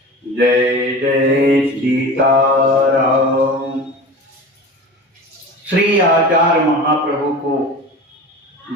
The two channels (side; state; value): both; normal; correlation 0.34